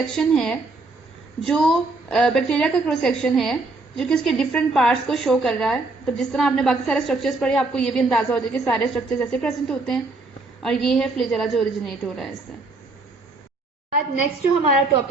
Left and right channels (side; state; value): left; quieter; 3.3 dB